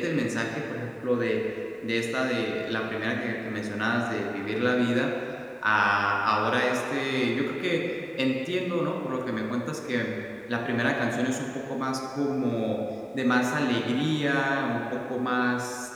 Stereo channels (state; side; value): identical; both; correlation 1.00